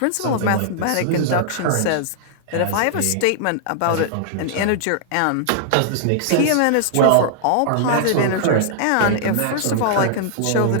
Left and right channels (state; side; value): different; both; correlation -0.01